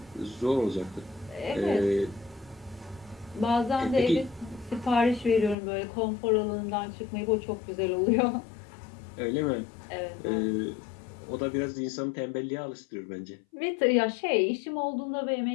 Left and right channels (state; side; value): drops out; right; at 5.6 s